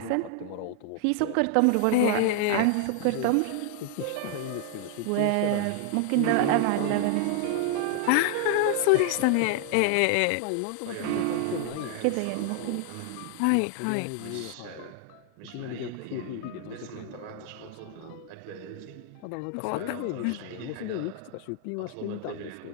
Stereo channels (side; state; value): both; different; correlation 0.00